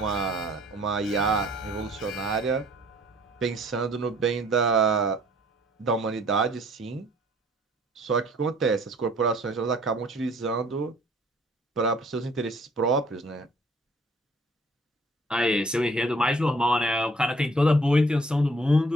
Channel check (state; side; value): normal; both; correlation 0.58